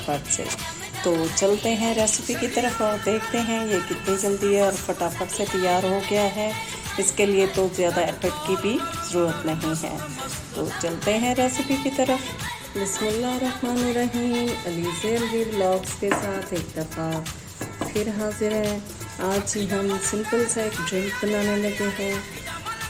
से। तो चलते हैं रेसिपी की तरफ और देखते हैं ये कितनी जल्दी है और फटाफट से तैयार हो गया है। इसके लिए तो ज़्यादा एफर्ट की भी ज़रूरत नहीं है। तो चलते हैं रेसिपी की तरफ। बिस्मिल्लाहिर्रहमानिर्रहीम। अलीज़े अलवी व्लॉग्स के साथ एक दफ़ा फिर हाजिर हैं। आज ही हम सिंपल सा एक ड्रिंक बनाने लगे हैं,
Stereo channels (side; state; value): both; identical; correlation 1.00